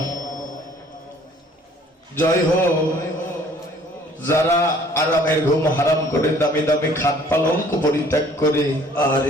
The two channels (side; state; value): both; normal; correlation 0.56